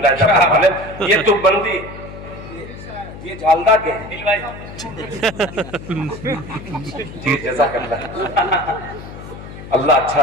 ये तो बंदी ये झालदा के जी जज़ाकल्लाह अल्लाह अच्छा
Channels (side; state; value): left; noise; hum, 13 dB below the sound